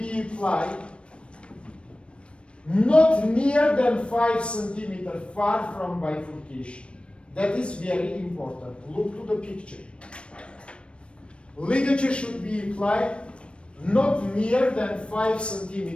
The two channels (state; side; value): late; right; 0.059 ms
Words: applied not near than 5 centimeters far from bifurcation. That is very important. Look to the picture. Ligature should be applied not near than 5